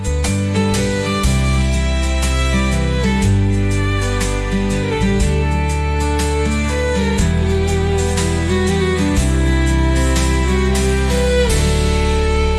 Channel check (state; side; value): identical; both; correlation 1.00